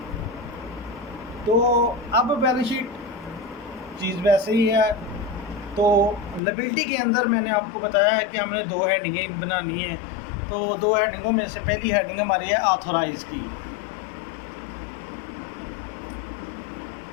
तो अब बैलेंस शीट चीज़ वैसे ही है। तो लायबिलिटी के अंदर मैंने आपको बताया है कि हमने 2 हेडिंगें बनानी है। तो 2 हेडिंगों में से पहली हेडिंग हमारी है ऑथोराइज की।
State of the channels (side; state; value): right; drops out; at 6.4 s